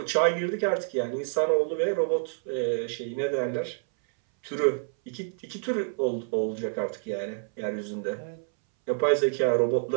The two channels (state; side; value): silent; left; 59 dB below the other